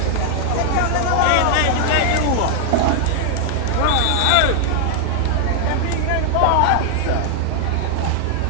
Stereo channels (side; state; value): both; different; correlation 0.00